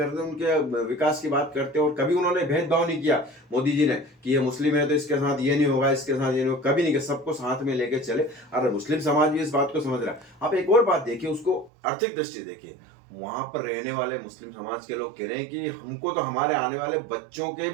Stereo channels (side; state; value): left; drops out; at 11.7 s